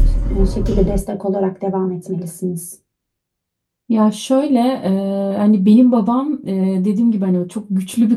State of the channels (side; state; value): both; identical; correlation 1.00